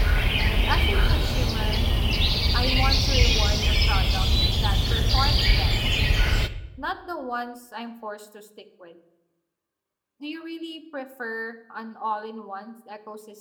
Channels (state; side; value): identical; both; correlation 1.00